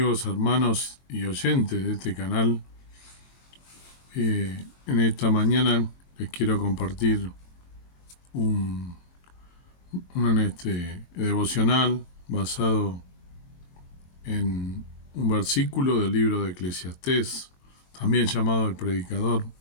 hermanos y oyentes de este canal. En esta mañana les quiero compartir un devocional basado en un versículo del libro de Eclesiastés, también llamado el predicador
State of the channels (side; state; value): right; late; 22 ms